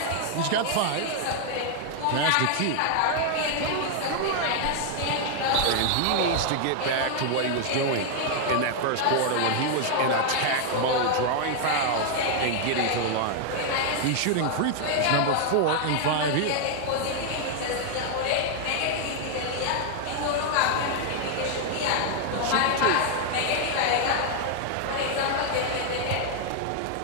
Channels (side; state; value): both; different; correlation 0.00